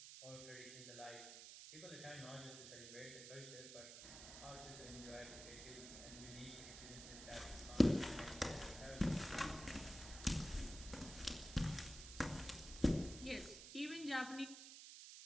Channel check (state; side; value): noise; right; hiss, 11 dB below the sound